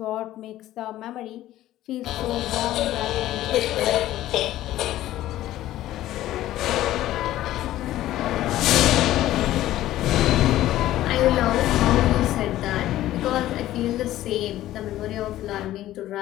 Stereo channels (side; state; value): right; quieter; 14.3 dB